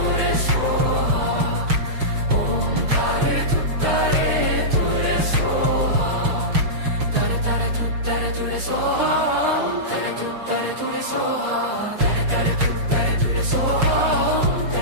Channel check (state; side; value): late; left; 6.4 ms